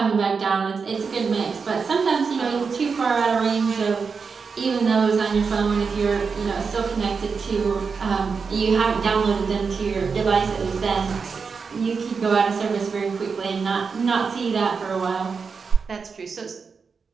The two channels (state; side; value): quieter; left; 5.3 dB